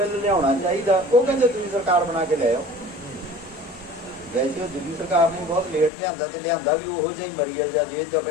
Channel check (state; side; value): drops out; right; at 5.9 s